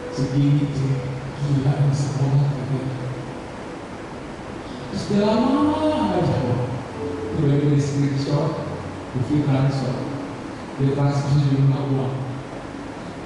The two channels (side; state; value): both; identical; correlation 1.00